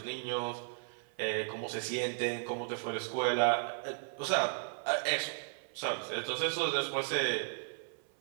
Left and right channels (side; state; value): left; silent; 54 dB below the other